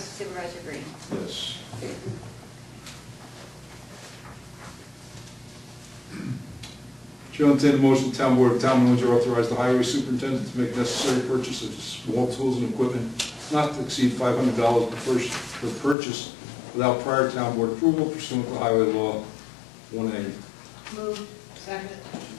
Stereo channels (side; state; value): right; drops out; at 16.0 s